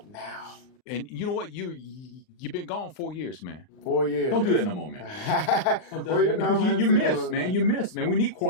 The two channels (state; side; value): late; right; 39 ms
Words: now. And you know what? You've been gone 4 years, man. 4 years. Don't do that no more, man. Well, you know, because you miss, man. You miss, man. We need